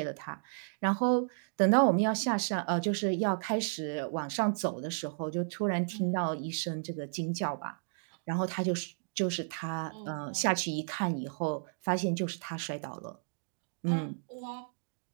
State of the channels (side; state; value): left; silent; digital silence